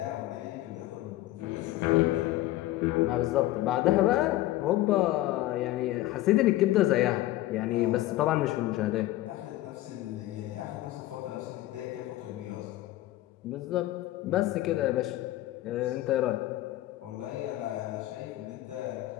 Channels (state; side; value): quieter; right; 16.0 dB